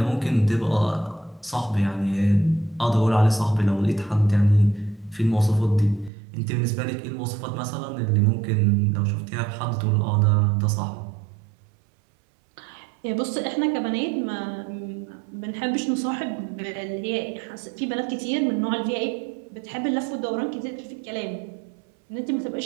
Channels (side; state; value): left; drops out; at 6.1 s